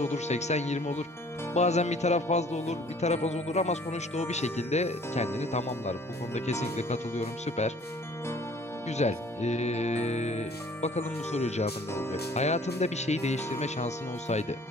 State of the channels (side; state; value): both; normal; correlation 0.54